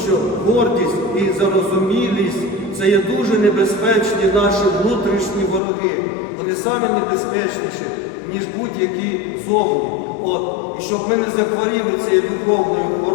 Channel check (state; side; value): drops out; right; at 5.6 s